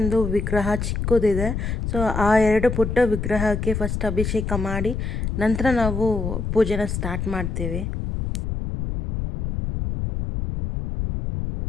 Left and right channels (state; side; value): noise; left; rumble, 3 dB below the sound